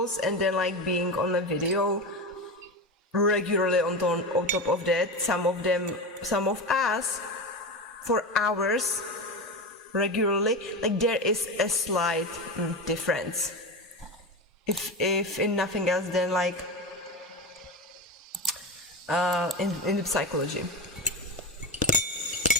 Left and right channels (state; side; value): normal; both; correlation 0.21